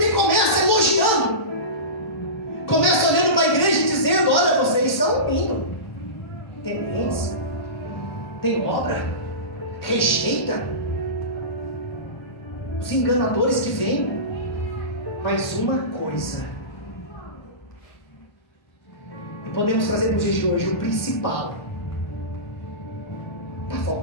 começa elogiando, começa olhando para a igreja e dizendo: olha, vocês são lindos, tementes, tem obra, rejeita os enganadores que vêm. Mas uma coisa, e podemos trazer nos dias de hoje, o principal está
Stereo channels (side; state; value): right; late; 1.2 ms